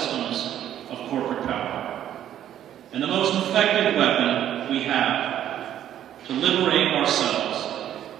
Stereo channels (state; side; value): quieter; left; 11.0 dB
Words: of corporate power. And the most effective weapon we have to liberate ourselves